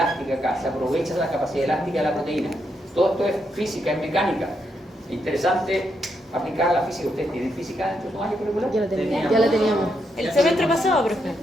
acá, se aprovecha de la capacidad elástica de la proteína. Todo esto es física, es mecánica. Interesante aplicar la física. ¿Ustedes tienen física dentro de su año curricular? Ya la teníamos. El semestre pasado, profe.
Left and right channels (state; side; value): normal; both; correlation 0.80